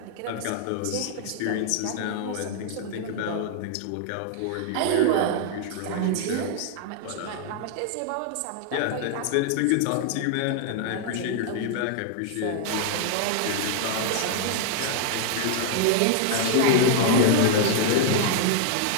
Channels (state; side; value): different; both; correlation 0.00